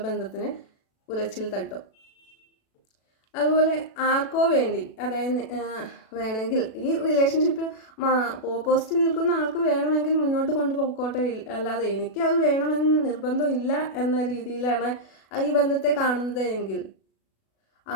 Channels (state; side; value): late; right; 37 ms